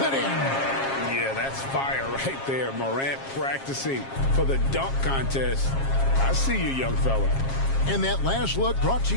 in. Yeah, that's fire right there. Morant practicing for the dunk contest. I see you, young fella. And that last look brought to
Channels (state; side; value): late; right; 7.4 ms